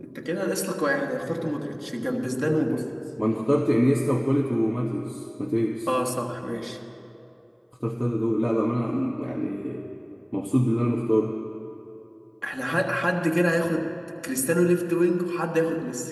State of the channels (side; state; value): both; identical; correlation 1.00